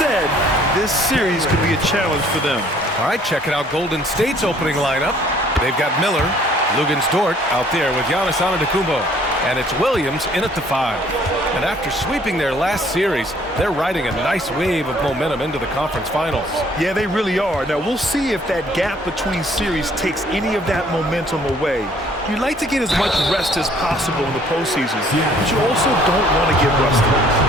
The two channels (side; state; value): both; normal; correlation 0.59